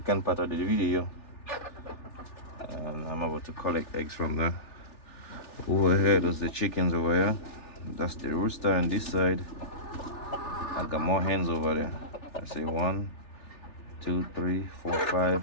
part of the video, and I'm about to collect eggs from there. Over here, there's the chickens over here. That's the rooster on this side. I got more hens over there. I say 1, 2, 3, 4, 5.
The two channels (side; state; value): right; late; 3.4 ms